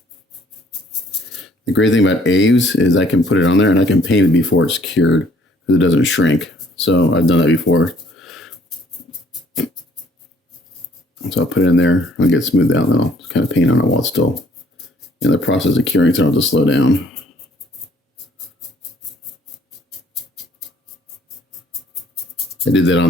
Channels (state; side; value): normal; both; correlation 0.60